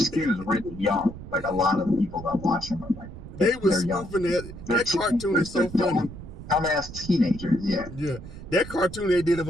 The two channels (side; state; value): right; noise; rumble, 13 dB below the sound